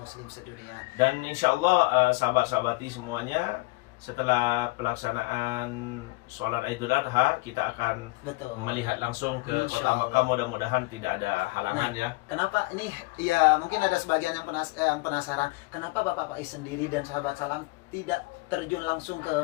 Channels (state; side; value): quieter; right; 23.4 dB